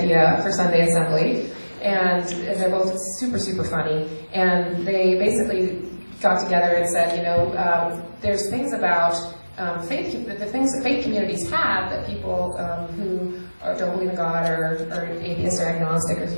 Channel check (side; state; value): both; inverted; correlation -1.00